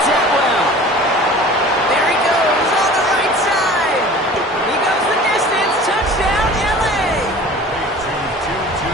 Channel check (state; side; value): normal; both; correlation 0.42